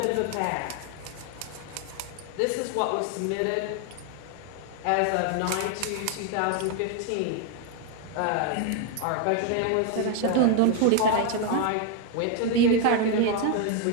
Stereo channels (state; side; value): different; both; correlation 0.01